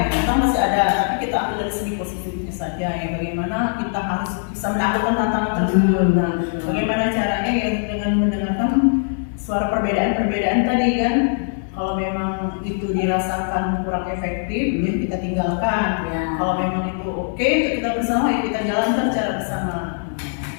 memang masih ada, tapi kita ambil dari segi positifnya saja ya, bagaimana kita harus bisa melakukan tantangan tersebut. Nah, bagaimana caranya ya dengan mendengarkan suara perbedaan-perbedaan tadi kan, kalau memang itu dirasakan kurang efektif ya kita tinggalkan. Ya. Kalau memang itu oke untuk kita bersama ya kita jalankan secara bersama.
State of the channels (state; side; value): silent; right; digital silence